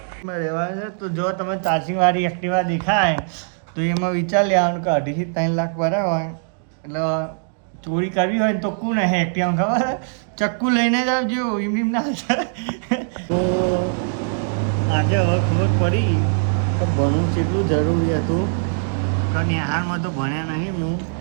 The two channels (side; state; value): left; silent; digital silence